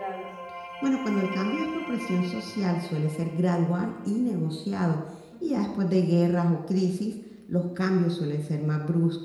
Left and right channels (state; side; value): identical; both; correlation 1.00